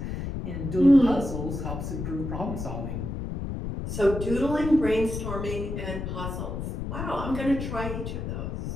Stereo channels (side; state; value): left; noise; rumble, 5 dB below the sound